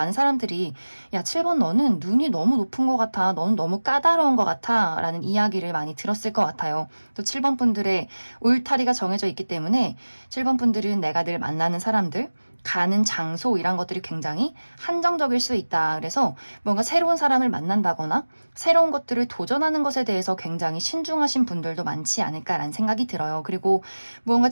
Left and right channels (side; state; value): both; inverted; correlation -1.00